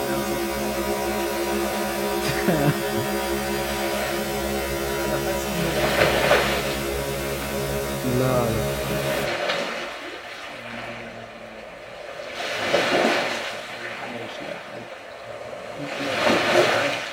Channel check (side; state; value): both; identical; correlation 1.00